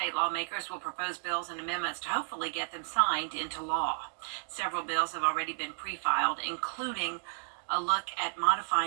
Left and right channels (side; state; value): left; silent; digital silence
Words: lawmakers will propose bills and amendments to hopefully get them signed into law. Several bills have already been pre-filed, including a look at